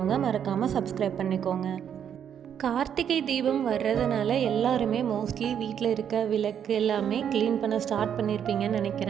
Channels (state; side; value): quieter; left; 8.7 dB